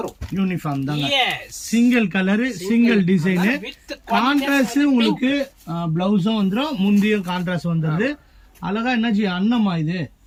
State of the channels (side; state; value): both; identical; correlation 1.00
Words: யூனிஃபார்ம் தாங்க. Single colour single design. Contrast உங்களுக்கு பிளவுஸும் வந்துரும், முந்தியும் கான்ட்ராஸ்ட் வந்துருது. அழகா என்னஜி அன்னமா இது.